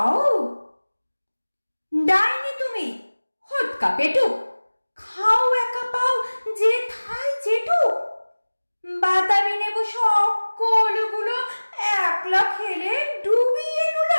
ডাইনি তুমি হটকা পেটুক, খাও একা পাও যে থাই যেটুক, বাতাবি নেবু সকলগুলো একলা খেলে ডুবিয়ে নুল,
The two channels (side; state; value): both; inverted; correlation -1.00